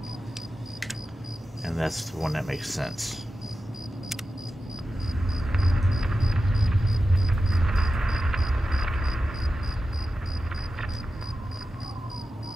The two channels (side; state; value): both; normal; correlation 0.92